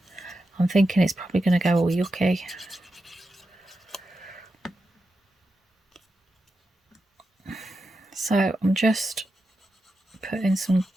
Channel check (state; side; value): normal; both; correlation 0.89